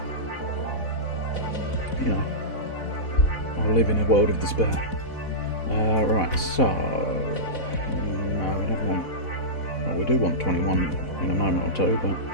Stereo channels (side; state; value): right; late; 4.1 ms